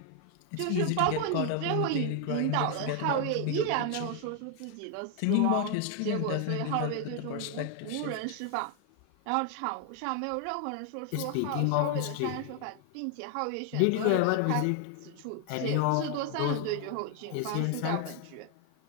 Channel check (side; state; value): both; different; correlation 0.00